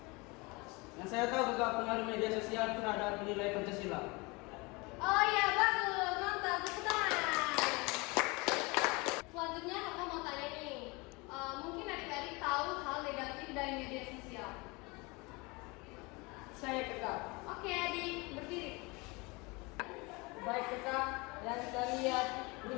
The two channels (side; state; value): right; quieter; 26.2 dB